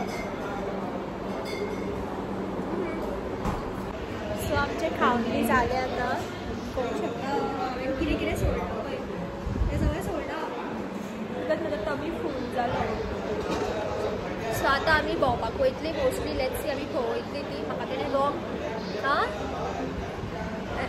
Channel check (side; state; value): both; identical; correlation 1.00